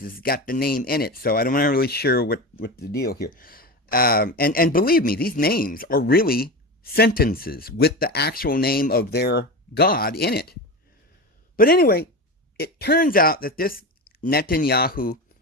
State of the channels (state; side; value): normal; both; correlation 0.24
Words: has got the name in it. So I'm not really sure what the deal here. And believe me, these names are really sentences with the actual name of their God in it. But anyway, it turns out that this Netanyahu,